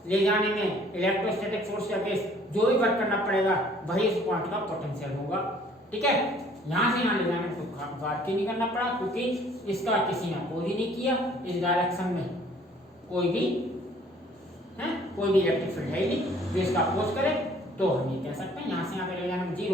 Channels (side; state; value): both; normal; correlation 0.57